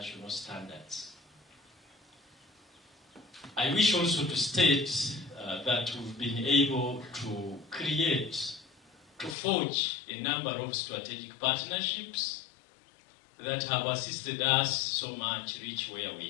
standards. I wish also to state that we've been able to forge a number of strategic partnerships that have assisted us so much reach where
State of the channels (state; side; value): drops out; right; at 9.3 s